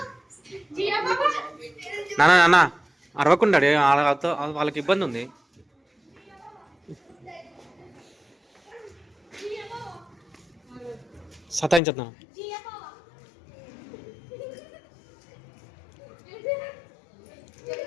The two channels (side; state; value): right; drops out; at 11.8 s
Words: నాన్న నాన్న అరవకుండా వాళ్ళకి ఇబ్బంది ఉంది. సతాయించద్దు.